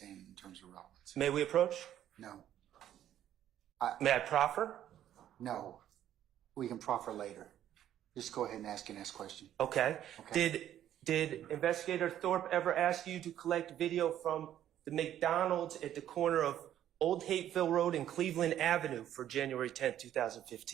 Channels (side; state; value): left; quieter; 11.4 dB